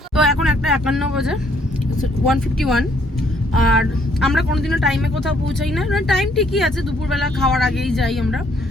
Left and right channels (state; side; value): normal; both; correlation 0.66